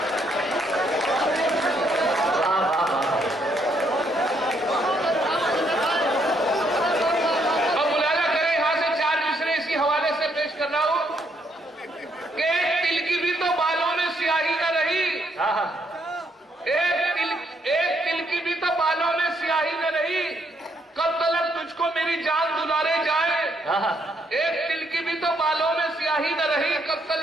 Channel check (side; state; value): both; normal; correlation 0.73